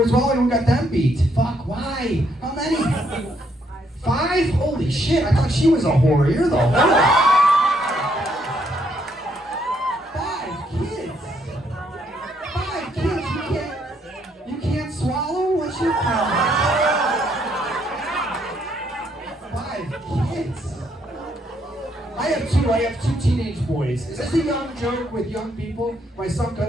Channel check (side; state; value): both; normal; correlation 0.72